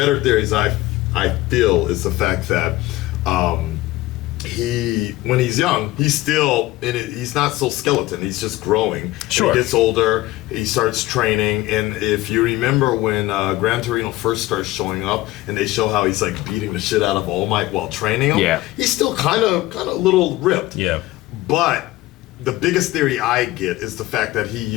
theories I feel is the fact that when he's young, he's still he's not so skeleton, he's just growing. Sure. When he gets older, he starts training, and if you remember when Gran Torino first starts showing up and they show how he's like beating the shit out of All Might while training him, he's still kind of a little ripped. Yeah. But the biggest theory I get is the fact that he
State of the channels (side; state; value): right; quieter; 17.7 dB